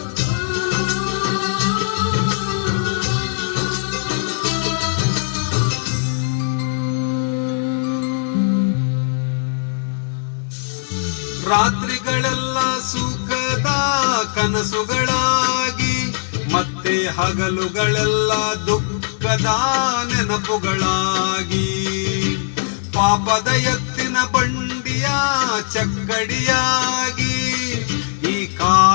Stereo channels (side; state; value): right; silent; digital silence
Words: ರಾತ್ರಿಗಳೆಲ್ಲ ಸುಖದ ಕನಸುಗಳಾಗಿ, ಮತ್ತೆ ಹಗಲುಗಳೆಲ್ಲ ದುಃಖದ ನೆನಪುಗಳಾಗಿ, ಪಾಪದ ಎತ್ತಿನ ಬಂಡಿಯ ಚಕ್ಕಡಿಯಾಗಿ, ಈ